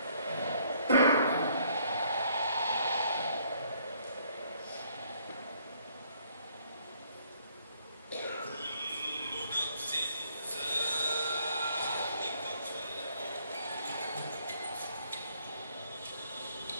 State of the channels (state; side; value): inverted; both; correlation -0.66